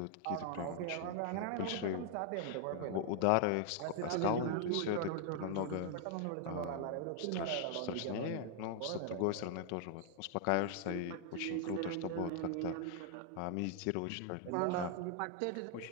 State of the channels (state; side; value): different; both; correlation 0.00